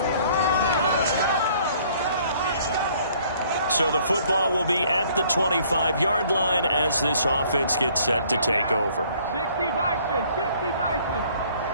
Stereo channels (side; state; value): both; inverted; correlation -0.59